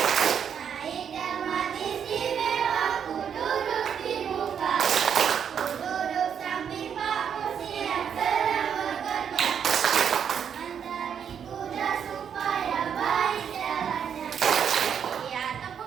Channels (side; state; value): left; quieter; 7.9 dB